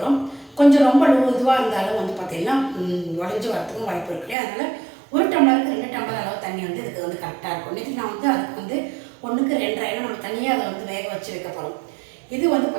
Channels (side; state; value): left; drops out; at 4.4 s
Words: கொஞ்சம் ரொம்ப இதுவாக இருந்தாலும் வந்து பார்த்திங்கன்னா உடஞ்சி வரத்துக்கும் வாய்ப்பு இருக்குது. அதனால் 1 டம்ளருக்கு 2 டம்ளர் அளவு தண்ணி வந்து இதுக்கு வந்து கரெக்டாக இருக்கும். நேற்று நான் வந்து அதுக்கு வந்து 1க்கு 2.5 ஏன்னா நம்ம தனியாக அதை வந்து வேக வச்சு வைக்க போகிறோம். இது வந்து